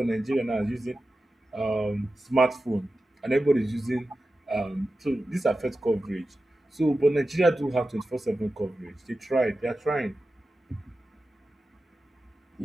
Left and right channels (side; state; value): both; normal; correlation 0.93